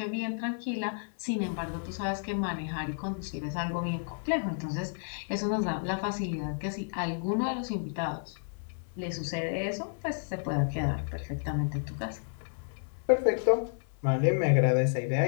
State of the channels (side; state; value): right; silent; digital silence